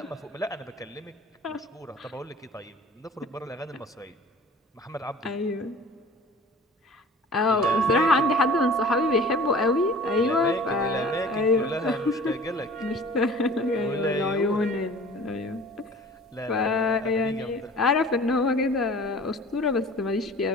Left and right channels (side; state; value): both; normal; correlation 0.45